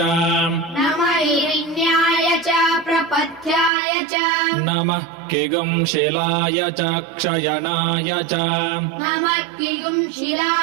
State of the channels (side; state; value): left; drops out; at 3.7 s